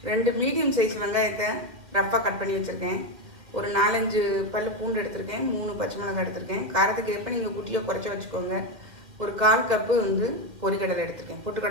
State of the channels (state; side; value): late; left; 2.3 ms